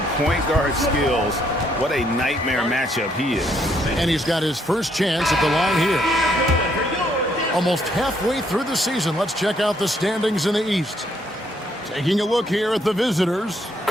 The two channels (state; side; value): normal; both; correlation 0.71